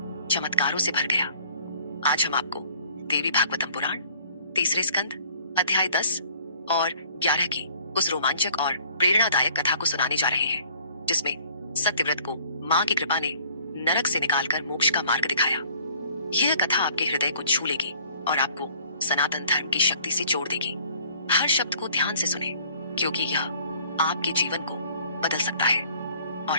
चमत्कारों से भर गया? आज हम आपको देवी भागवतम पुराण तीसरे स्कंद अध्याय 10 और 11 की उस रोमांचक और प्रेरणादायक कथा को सुनाने जा रहे हैं, जिसमें सत्यव्रत को माँ की कृपा ने नरक से निकालकर मोक्ष का मार्ग दिखाया। यह कथा आपके हृदय को छू लेगी और आपको सनातन धर्म की शक्ति से जोड़ देगी। हर शब्द को ध्यान से सुने, क्योंकि यह आपके जीवन को बदल सकता है।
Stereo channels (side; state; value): both; inverted; correlation -0.55